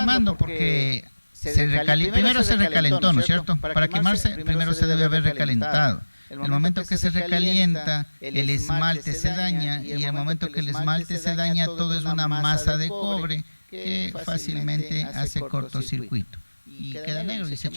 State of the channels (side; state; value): both; inverted; correlation -1.00